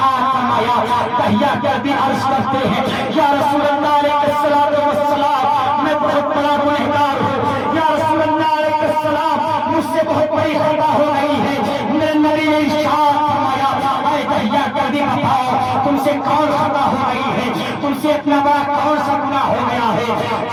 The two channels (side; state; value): both; identical; correlation 1.00